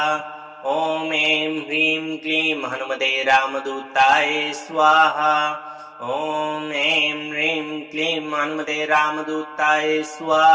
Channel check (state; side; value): identical; both; correlation 1.00